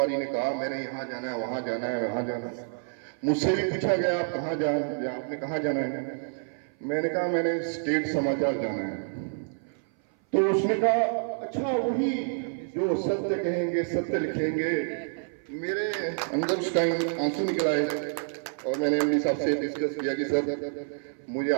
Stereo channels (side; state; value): left; silent; 57 dB below the other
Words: ने कहा मैंने यहाँ जाना है, वहाँ जाना है, वहाँ जाना है। मुझसे भी पूछा गया आप कहाँ आपने कहाँ जाना है? मैंने कहा मैंने स्टेट समाचार जाना है। तो उसने कहा अच्छा वही जो सत्य कहेंगे सत्य लिखेंगे। मेरे अंदर उस टाइम आंसू निकल आए और मैंने एमडी साहब से डिस्कस किया कि सर मुझे